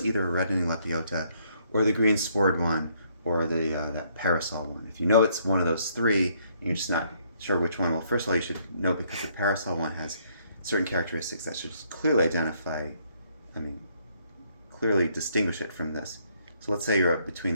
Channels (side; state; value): both; inverted; correlation -0.69